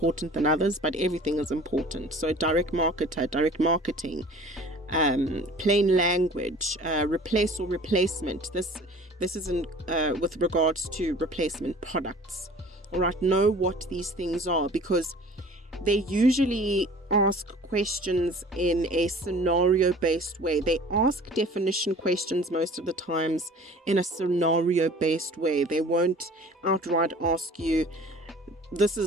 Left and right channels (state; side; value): normal; both; correlation 0.46